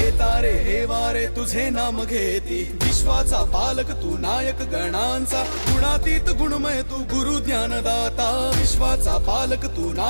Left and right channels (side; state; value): both; inverted; correlation -1.00